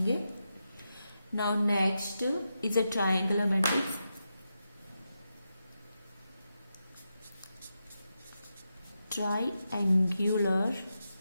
Now next is a triangular matrix. Triangular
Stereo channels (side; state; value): both; inverted; correlation -0.87